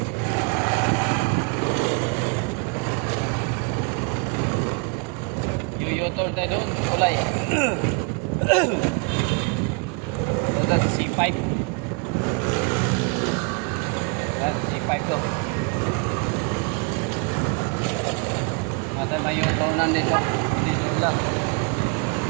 Yuyotor tayo doon, kulay. Ito sa C5. C5 to. Mata may yutonan dito. Dito lang.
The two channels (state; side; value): quieter; left; 33.3 dB